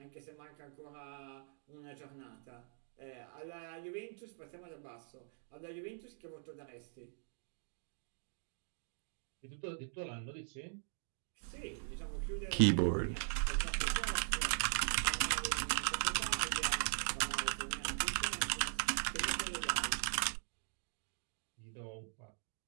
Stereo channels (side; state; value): left; silent; digital silence